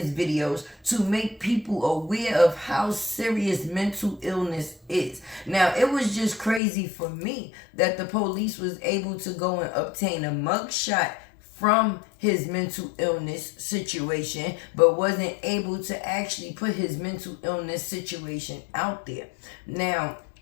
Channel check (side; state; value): right; drops out; at 6.6 s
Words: videos to make people aware of how serious mental illness is. Now, it was just crazy for me that the police was able to go and obtain a mugshot from his mental illness situation, but wasn't able to actually put his mental illness situation out there. Now,